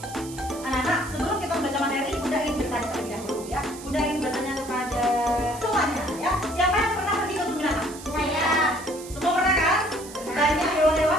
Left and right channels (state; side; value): noise; right; hiss, 15 dB below the sound